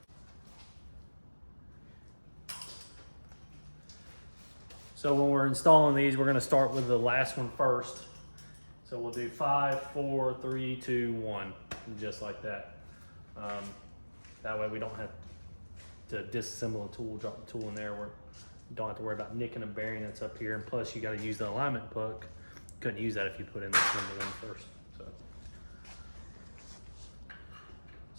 So when we're installing these, we're gonna start with the last one first. So we'll do 5, 4, 3, 2, 1, just like that. That way we don't have to disassemble a tool, drop the tool in there. We don't have to worry about nicking a bearing that's up here. And plus you gotta use the alignment puck. Couldn't use that if you put in this number 1 first.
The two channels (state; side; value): inverted; both; correlation -1.00